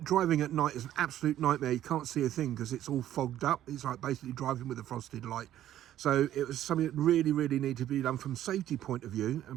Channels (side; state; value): left; quieter; 12.3 dB